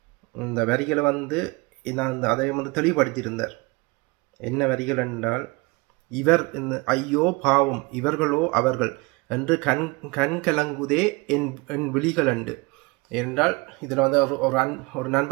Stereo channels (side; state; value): left; quieter; 26.1 dB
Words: இந்த வரிகளை நான் அதை தெளிவுபடுத்தியிருந்தார். என்ன வரிகள் என்றால், இவர் ஐயோ பாவம் இவர்களோ அவர்கள் என்று கண் கலங்குதே என் விழிகள் அண்டு என்றால், இதில் ஒரு